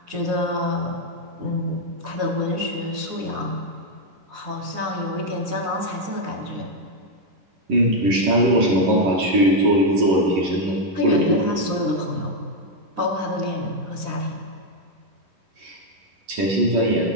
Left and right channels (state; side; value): late; left; 11 ms